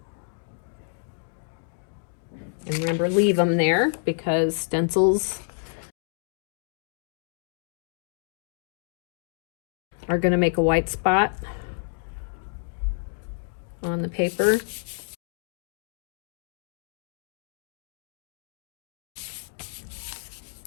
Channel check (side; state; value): right; silent; digital silence